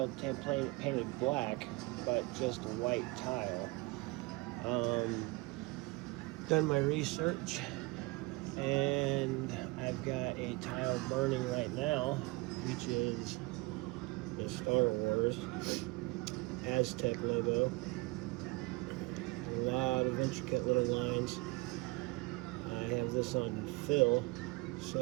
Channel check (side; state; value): left; quieter; 24.7 dB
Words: painted black, but just white tile. Done my research, and I've got a tile burning right now, which is the Star Wars Aztec logo. A lot of intricate little lines. I have this on fill